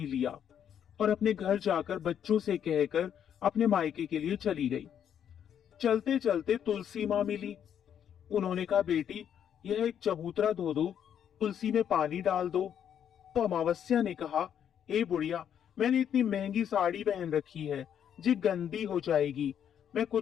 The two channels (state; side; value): quieter; right; 9.1 dB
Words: लिया और अपने घर जाकर बच्चों से कहकर अपने मायके के लिए चली गई। चलते चलते तुलसी माँ मिली। उन्होंने कहा, बेटी, यह एक चबूतरा धो दो, तुलसी में पानी डाल दो। तो अमावस्या ने कहा, ए बुढ़िया, मैंने इतनी महंगी साड़ी पहन रखी है, जी गंदी हो जाएगी, मैं